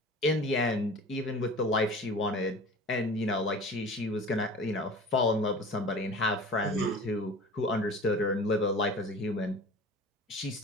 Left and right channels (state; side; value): normal; both; correlation 0.40